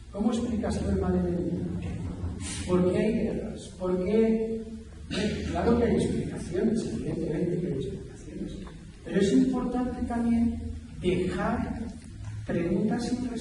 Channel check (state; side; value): identical; both; correlation 1.00